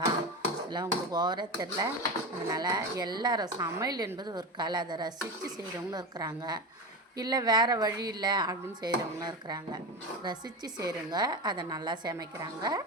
உங்களுக்கு ஓவராக தெரில. அதனால் எல்லோரும் சமையல் என்பது ஒரு கலை, அதை ரசித்து செய்கிறவங்களும் இருக்கிறாங்க, இல்லை வேறு வழி இல்லை அப்படின்னு செய்கிறவங்களும் இருக்கிறாங்க. ரசித்து செய்கிறவங்க அதை நல்லா சமைக்கிறாங்க.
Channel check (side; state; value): both; normal; correlation 0.22